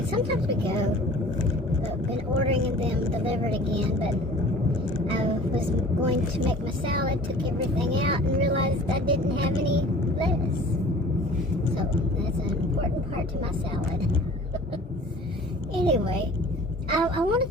sometimes we go, but we've been ordering them delivered again, but I was going to make my salad, took everything out and realized I didn't have any lettuce. So that's an important part to my salad. Anyway, I want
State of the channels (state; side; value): normal; both; correlation 0.45